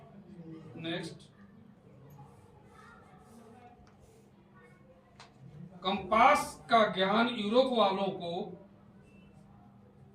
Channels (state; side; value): identical; both; correlation 1.00